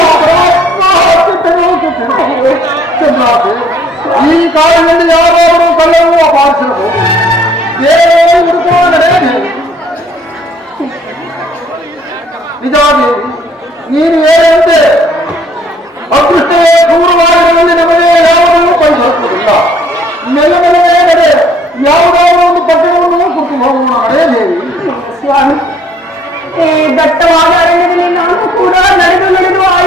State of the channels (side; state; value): both; normal; correlation 0.61